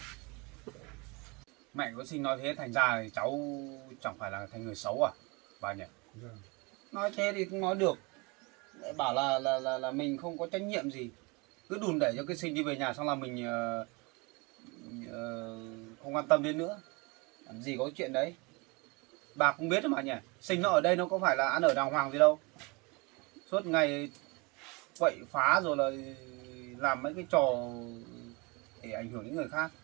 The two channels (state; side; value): quieter; left; 27.8 dB